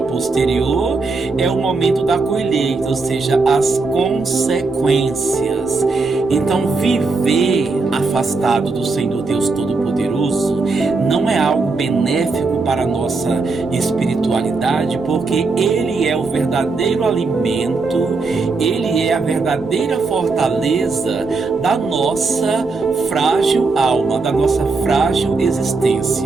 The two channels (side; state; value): left; quieter; 3.9 dB